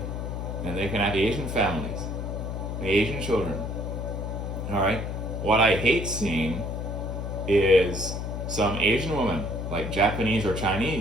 And they can have Asian families, the Asian children, all right? What I hate seeing is some Asian woman, like Japanese or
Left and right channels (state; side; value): noise; left; hum, 4 dB below the sound